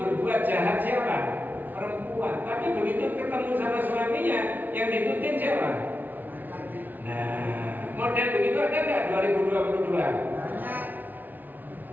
jahat siapa? Perempuan. Tapi begitu ketemu sama suaminya, yang ditutin siapa? Nah, model begitu ada nggak 2022?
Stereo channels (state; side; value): late; left; 0.083 ms